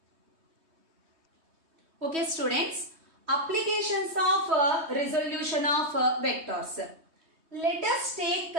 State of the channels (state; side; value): late; left; 3.2 ms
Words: Okay students, applications of resolution of vectors. Let us take